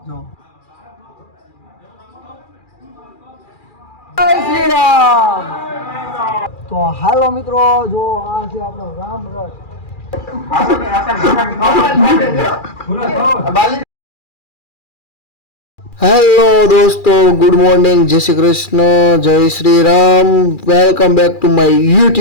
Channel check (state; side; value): late; right; 2.4 ms